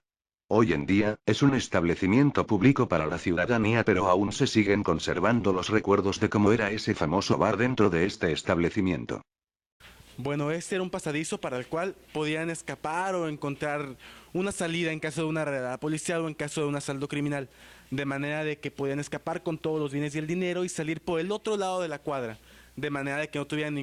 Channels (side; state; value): both; identical; correlation 1.00